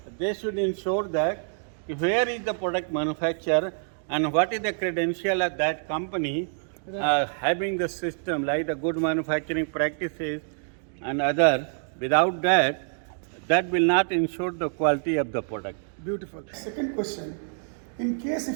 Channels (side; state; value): left; silent; digital silence